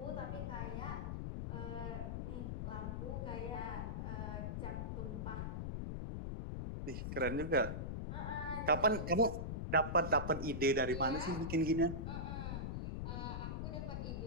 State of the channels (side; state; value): left; noise; rumble, 3 dB below the sound